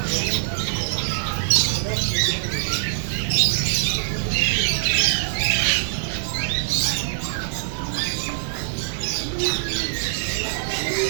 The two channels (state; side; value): silent; left; 60 dB below the other